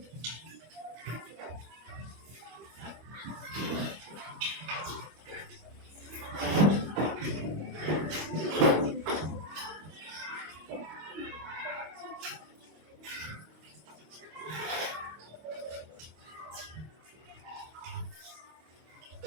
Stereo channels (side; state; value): left; late; 25 ms